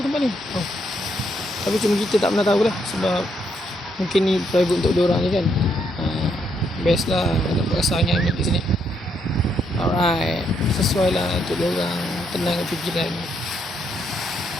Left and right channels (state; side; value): normal; both; correlation 0.75